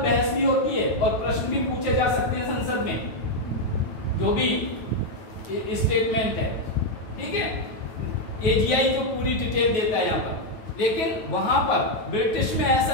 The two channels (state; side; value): late; right; 9.4 ms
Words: बहस भी होती है और प्रश्न भी पूछे जा सकते हैं संसद में, जो भी स्टेटमेंट है, ठीक है। एजीआई जो पूरी डिटेल देता है यहाँ पर, लेकिन वहां पर ब्रिटिश में ऐसा